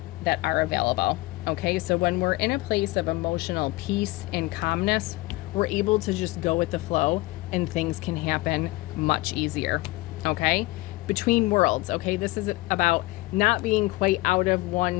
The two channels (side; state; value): right; quieter; 20.6 dB